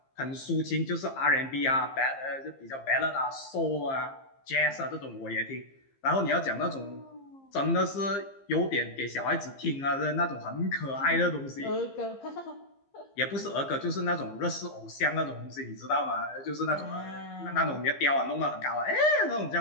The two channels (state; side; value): late; right; 15 ms